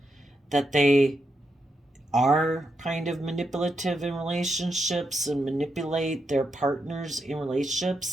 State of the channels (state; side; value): normal; both; correlation 0.84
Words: that they are kind of manipulative in relationships and manipulate their partners in